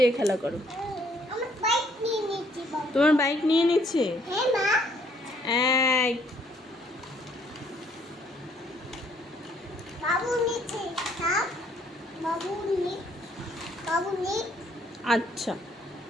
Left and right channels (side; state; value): both; normal; correlation 0.65